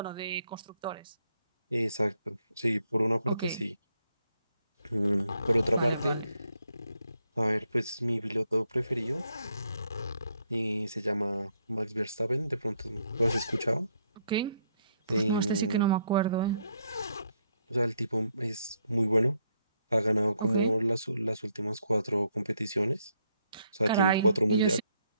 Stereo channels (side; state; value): both; inverted; correlation -0.73